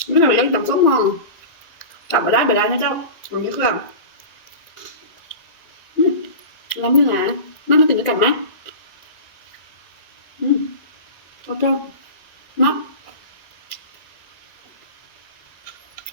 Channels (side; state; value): right; late; 1.9 ms